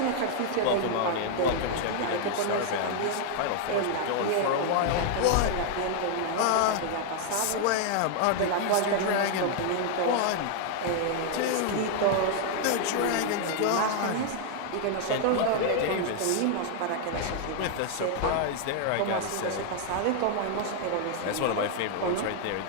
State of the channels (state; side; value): different; both; correlation 0.00